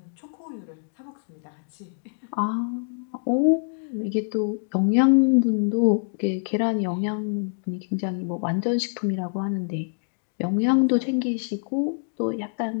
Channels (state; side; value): silent; right; 61 dB below the other